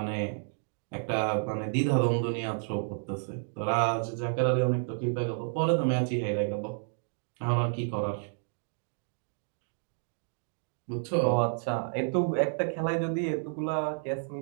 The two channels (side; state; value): left; silent; digital silence